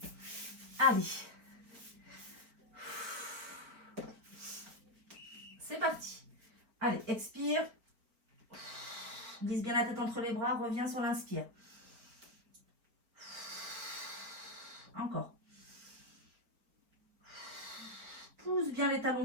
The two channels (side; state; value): left; late; 4.4 ms